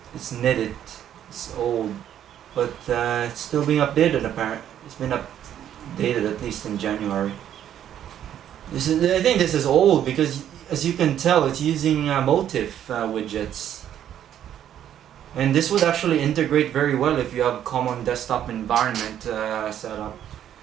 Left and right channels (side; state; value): left; quieter; 10.5 dB